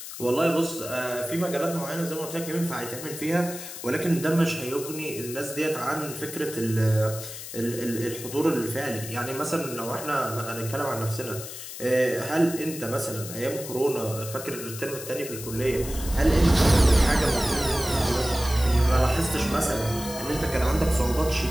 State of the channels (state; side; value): noise; left; hiss, 10 dB below the sound